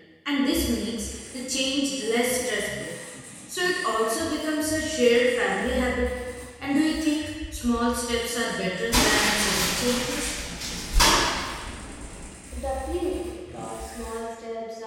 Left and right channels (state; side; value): identical; both; correlation 1.00